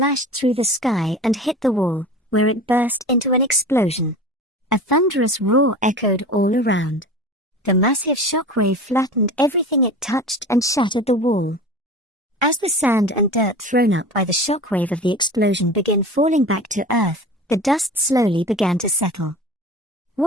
through the sky and hit the wall, where it burst into an explosion. A thunderous roar echoed all around. The massive shockwave flattened everything it touched and shattered the wall. As the sand and dirt thrown up by the shockwave of the explosion began falling back to earth, the dust slowly began to settle.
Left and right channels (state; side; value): normal; both; correlation 0.35